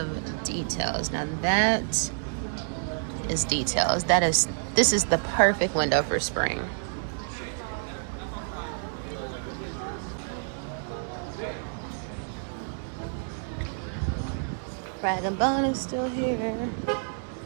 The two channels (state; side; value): silent; left; digital silence